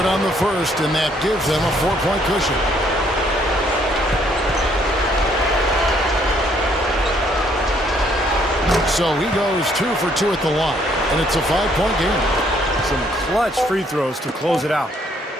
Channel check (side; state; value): both; normal; correlation 0.67